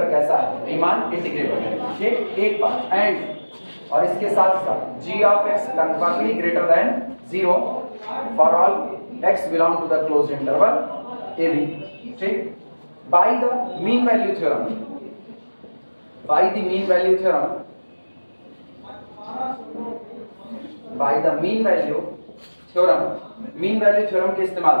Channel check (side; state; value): both; inverted; correlation -1.00